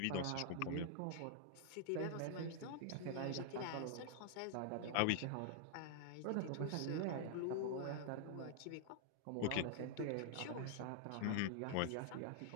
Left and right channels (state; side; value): different; both; correlation -0.01